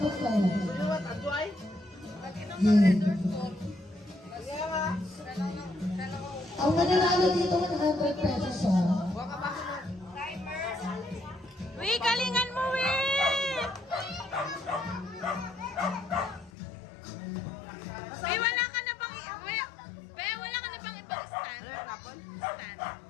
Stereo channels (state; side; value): drops out; right; at 16.5 s